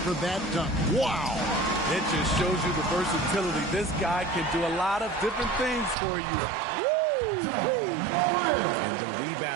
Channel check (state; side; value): drops out; left; at 6.0 s